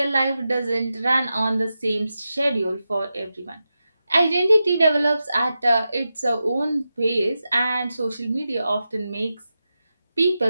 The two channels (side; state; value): both; inverted; correlation -0.91